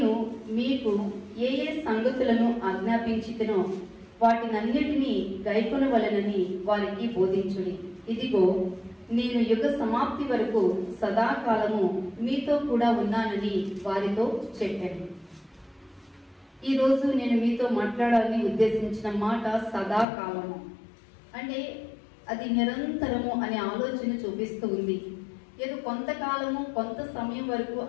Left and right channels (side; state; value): right; drops out; at 20.1 s